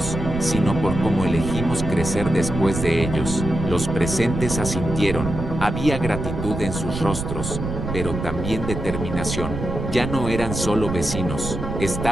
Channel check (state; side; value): noise; right; rumble, 5 dB below the sound